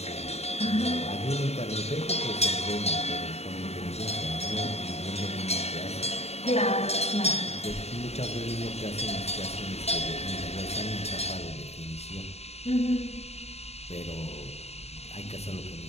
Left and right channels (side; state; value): right; late; 0.31 ms